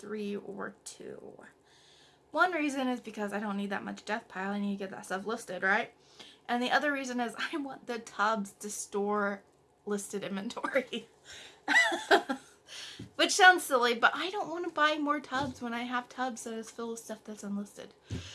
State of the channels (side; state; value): both; identical; correlation 1.00